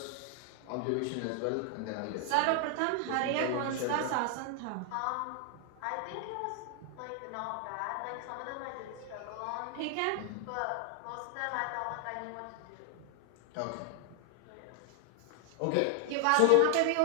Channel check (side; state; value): both; different; correlation 0.00